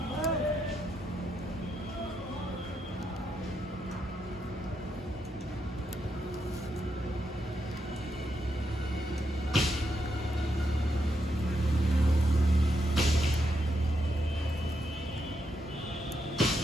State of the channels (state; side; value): normal; both; correlation 0.81